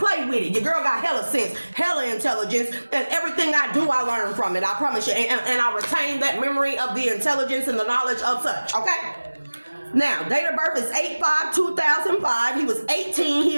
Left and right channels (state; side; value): inverted; both; correlation -1.00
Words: with it. Your girl got hella sense, hella intelligence, and everything I do, I learn from it. I promise you. And I retain that memory of the intelligence and the knowledge of such, okay? Now, date of birth is 8/5/2005. He was 18. He